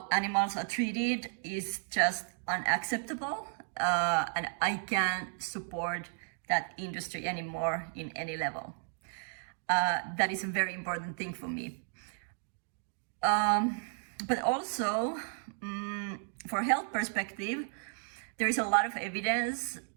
animals are treated is just unacceptable, and I can't support that industry anymore in any level. That is a very important thing for me. But also, for health perspective, there is a lot of evidence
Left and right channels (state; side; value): silent; left; 55 dB below the other